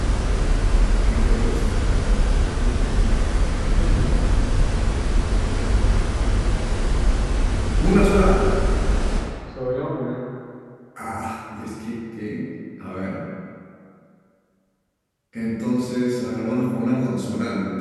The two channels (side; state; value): both; identical; correlation 1.00